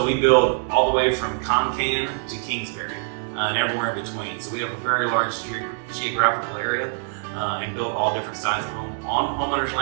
we build all the way from Concan to Kingsbury and everywhere in between. So we have a very large geographical area and build all different styles of home on homeowners'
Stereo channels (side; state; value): left; silent; 60 dB below the other